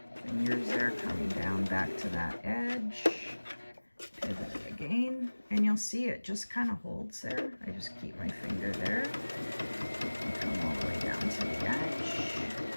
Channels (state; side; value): inverted; both; correlation -1.00